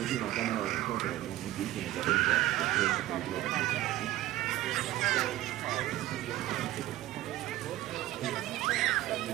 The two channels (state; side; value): quieter; left; 15.3 dB